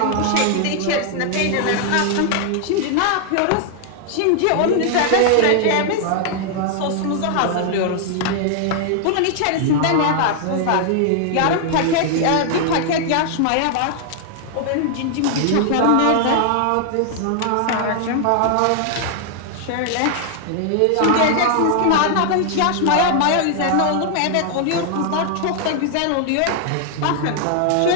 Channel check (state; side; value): different; both; correlation 0.00